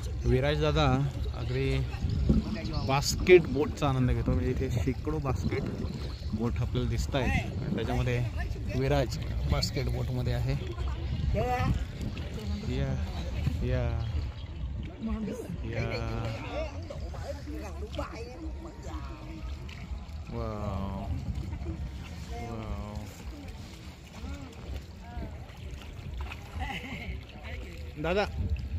विराज दादा अगदी बास्केट बोटचा आनंद घेतो. म्हणजे इथे शेकडो बास्केट बोट आपल्याला दिसत आहेत आणि त्याच्यामध्ये विराज बास्केट बोटमध्ये आहे. या या या वाव वाव. दादा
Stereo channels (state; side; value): identical; both; correlation 1.00